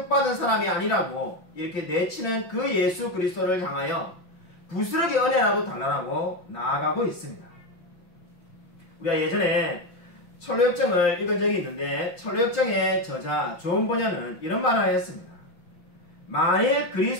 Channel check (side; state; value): right; late; 5.8 ms